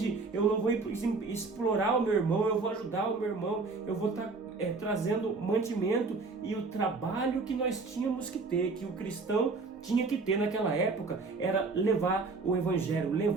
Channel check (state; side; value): quieter; left; 4.0 dB